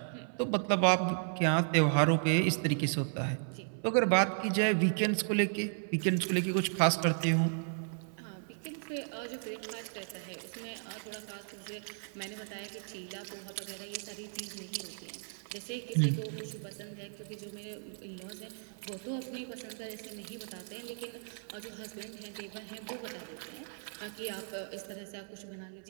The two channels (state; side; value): silent; left; 55 dB below the other